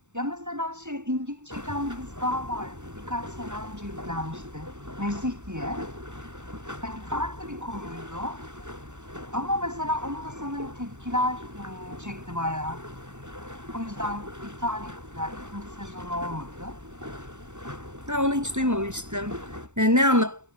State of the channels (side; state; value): left; late; 0.84 ms